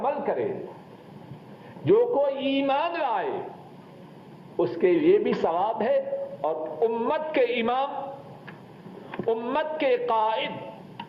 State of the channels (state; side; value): identical; both; correlation 1.00